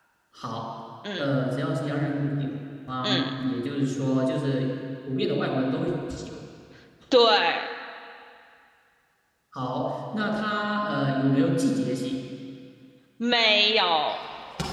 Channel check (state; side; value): identical; both; correlation 1.00